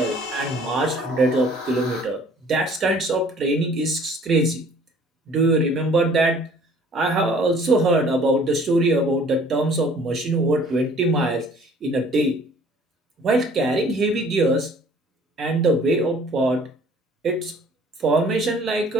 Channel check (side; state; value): both; normal; correlation 0.54